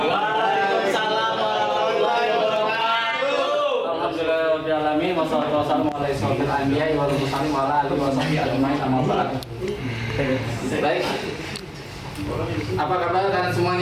Waalaikumsalam warahmatullahi wabarakatuh. Alhamdulillahirobbilalamin wassalatu wassalamu ala asyrofil anbiya'i wal mursalin wa ala alihi washabihi ajmain amma ba'd. Baik. Apa kabar kalian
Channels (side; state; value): both; identical; correlation 1.00